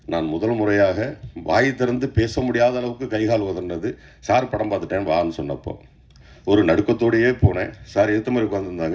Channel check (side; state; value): both; identical; correlation 1.00